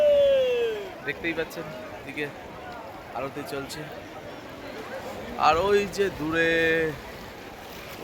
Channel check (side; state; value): both; identical; correlation 1.00